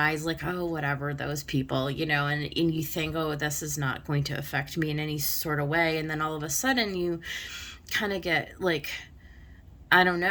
like, oh, whatever, those people, you know, and you think, oh, this is not going to affect me in any sort of way. And then all of a sudden you kind of get like, I don't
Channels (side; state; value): both; identical; correlation 1.00